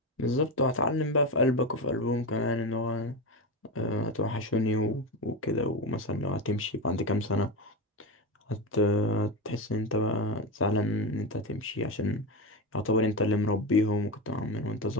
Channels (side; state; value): both; normal; correlation 0.17